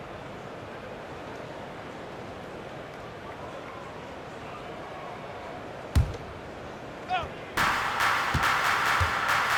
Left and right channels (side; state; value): both; identical; correlation 1.00